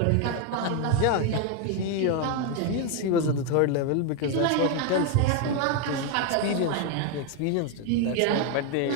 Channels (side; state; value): both; different; correlation 0.01